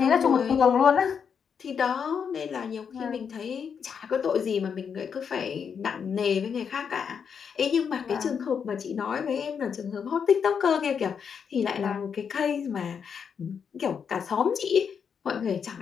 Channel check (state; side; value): quieter; right; 6.9 dB